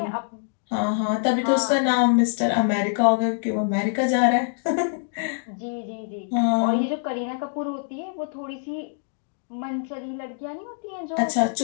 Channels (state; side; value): silent; right; digital silence